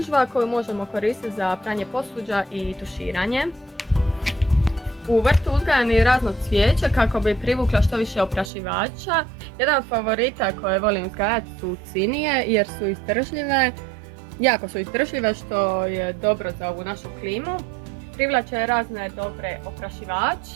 koju možemo koristiti za pranje posuđa i tuširanje. U vrtu uzgajam i razno cvijeće kako bi privukla što više oprašivača. Jedan od favorita koje volim uzgajati su cinije jer su izdržljive. Jako su izdržljive što je dobro za ovu našu klimu. Privlače razne dobre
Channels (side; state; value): left; drops out; at 8.5 s